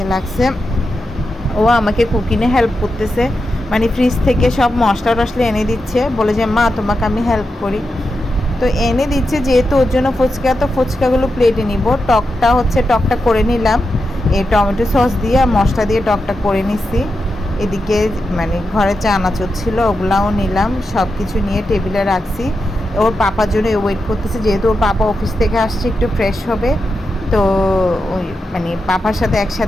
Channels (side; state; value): both; normal; correlation 0.88